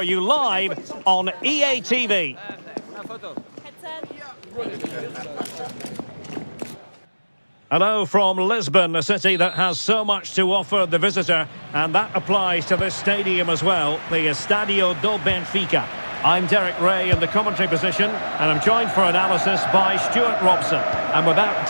you live on EA TV. Hello from Lisbon, a city that has so much to offer the visitor, and that applies to this stadium as well, the Estadio do Benfica. I'm Derek Ray in the commentary position, and I'm joined for analysis by Stuart Robson. And without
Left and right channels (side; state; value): both; inverted; correlation -1.00